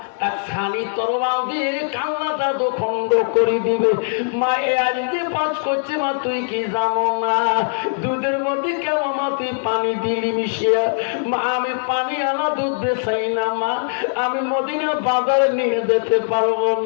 এক ছানি তরবাল দিয়ে কান্নাটা খণ্ড করে দিবে। মা এ আজকে পাঁচ করছে, মা তুই কি জানো না দুধের মধ্যে কেন মা তুই পানি দিলি মিশিয়া? মা আমি পানি আনা দুধ বেচাই না, মা আমি মদিনার বাজারে নিয়ে যেতে পারবো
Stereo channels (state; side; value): silent; right; 65 dB below the other